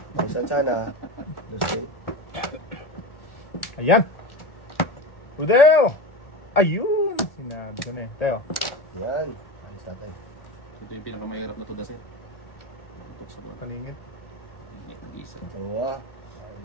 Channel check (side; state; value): right; late; 1.8 ms